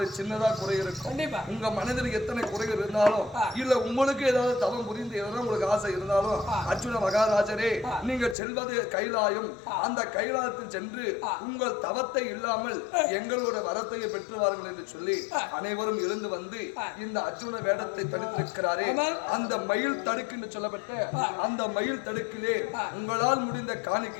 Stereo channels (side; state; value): right; drops out; at 8.3 s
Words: சின்னதா குறை இருக்கும். உங்க மனதில் எத்தனை குறைகள் இருந்தாலும் இல்ல உங்களுக்கு ஏதாவது தவம் புரிந்து எதனா உங்களுக்கு ஆசை இருந்தாலும் அர்ஜுன மகாராஜரே நீங்க செல்வது கைலாயம், அந்த கைலாயத்தில் சென்று உங்கள் தவத்தை இல்லாமல் எங்களோட வரத்தையை பெற்று வாருங்கள் என்று சொல்லி அனைவரும் எழுந்து வந்து இந்த அர்ஜுன வேடத்தை தடுத்திருக்கிறாரே, அந்த மயில் தடுக்கு என்று சொல்லப்பட்ட அந்த மயில் தடுக்கிலே உங்களால் முடிந்த